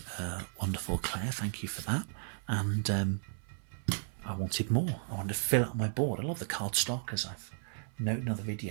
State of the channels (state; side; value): silent; left; 55 dB below the other